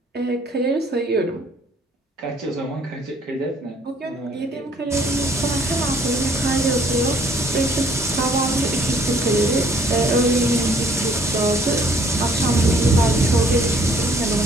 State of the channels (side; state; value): both; normal; correlation 0.61